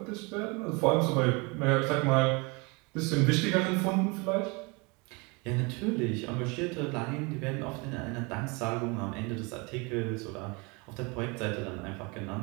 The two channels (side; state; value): left; quieter; 28.7 dB